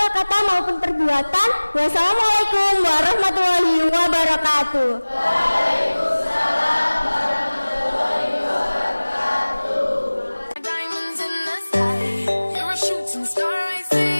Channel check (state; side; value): inverted; both; correlation -1.00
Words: kata maupun perbuatan. Wassalamualaikum warahmatullahi wabarakatuh. Waalaikumsalam warahmatullahi wabarakatuh. Diamonds in the sky, you're a shooting star, I